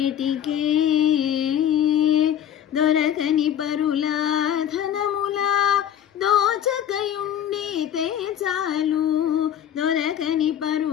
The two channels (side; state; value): right; quieter; 10.1 dB